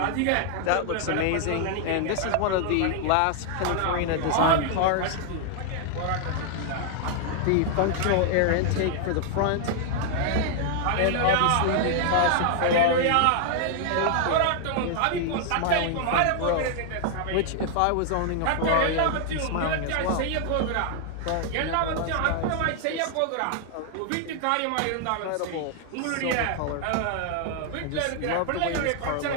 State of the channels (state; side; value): different; both; correlation 0.00